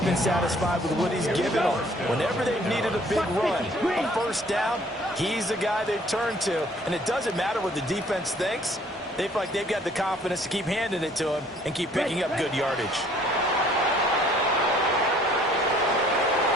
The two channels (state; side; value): normal; both; correlation 0.58